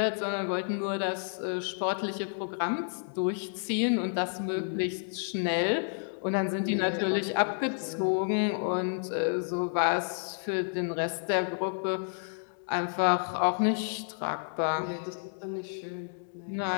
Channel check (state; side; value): silent; right; digital silence